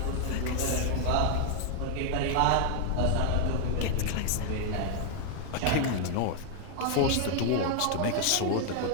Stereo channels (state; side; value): different; both; correlation 0.00